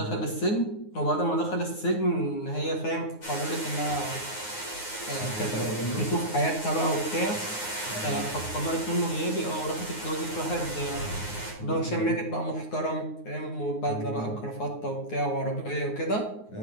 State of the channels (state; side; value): late; right; 9.6 ms